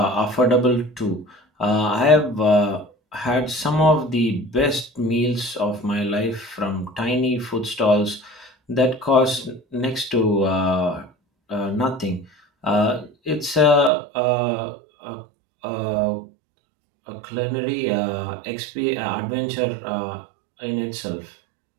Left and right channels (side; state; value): left; drops out; at 13.9 s